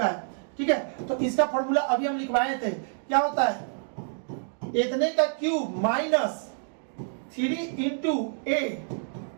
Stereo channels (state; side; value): silent; left; digital silence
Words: है, ठीक है। तो इसका फॉर्मूला अभी हम लिखवाए थे, क्या होता है, इतने का क्यूब माइनस 3 इंटू ए